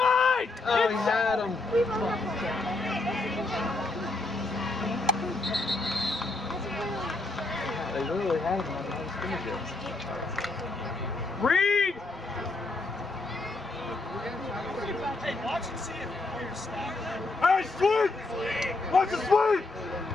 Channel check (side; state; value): right; quieter; 3.2 dB